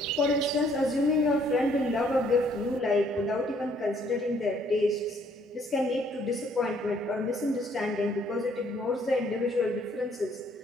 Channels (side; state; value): both; normal; correlation 0.64